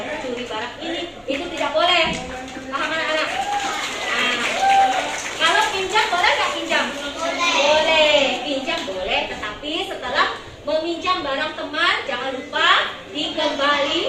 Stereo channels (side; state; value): both; identical; correlation 1.00